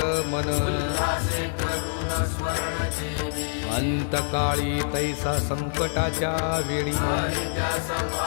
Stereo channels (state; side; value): silent; right; 61 dB below the other